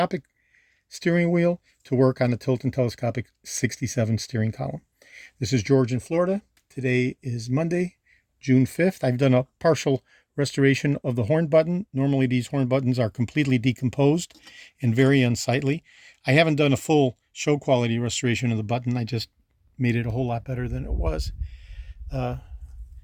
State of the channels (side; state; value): both; identical; correlation 1.00